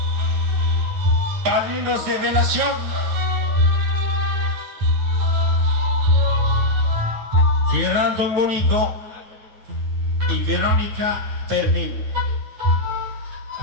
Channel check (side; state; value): left; late; 9.4 ms